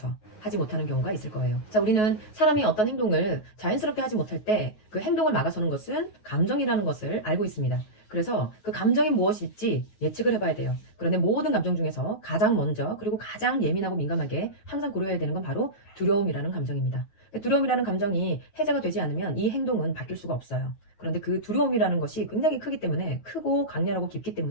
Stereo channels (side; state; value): right; late; 9.4 ms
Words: 하지 못하는 경우가 있을 거예요. 자, 우리는 사람이 어떤 행동을 자연스럽게 하지 못할 때 그 행동을 막아서는 것은 감정이라는 것을 알고 있습니다. 그래서 그 감정이 무엇일지 예측을 해봐야 돼요. 그런데 모든 감정 중에서 가장 먼저 그리고 가장 예민하고 민감하게 항상 고려해야 되는 건 바로 두려움이라는 감정입니다. 두려움이라는 감정이 해제가 되지 않으면 이 행동은 바뀔 수가 없어요. 그런데 그 두려움이라는 것이 굉장히 크기 때문에, 크고 강렬하고 깊기